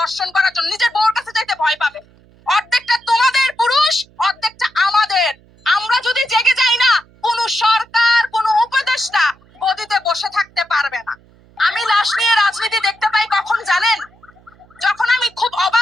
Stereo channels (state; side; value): noise; right; hum, 29 dB below the sound